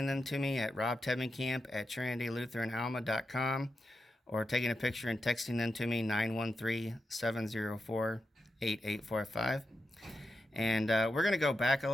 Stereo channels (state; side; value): normal; both; correlation 0.88